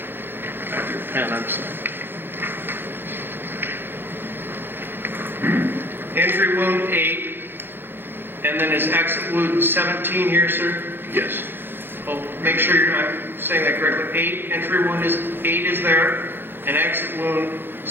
your pen, I'm sorry. Entry wound 8, and then is exit wound 17 here, sir? Yes. Oh, make sure I'm saying that correctly. 8, entry wound is 8 is there, and exit wound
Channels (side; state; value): left; late; 0.10 ms